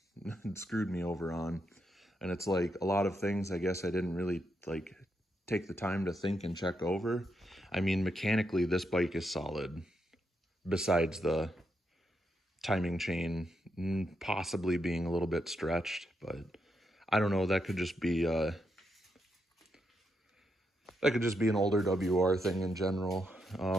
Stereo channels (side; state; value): both; normal; correlation 0.81